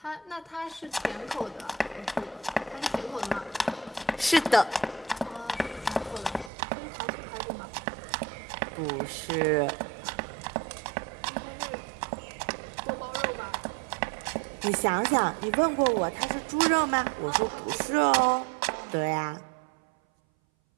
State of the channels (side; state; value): left; drops out; at 6.5 s